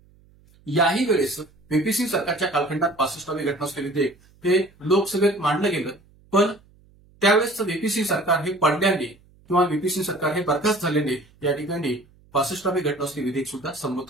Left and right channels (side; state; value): right; noise; hum, 29 dB below the sound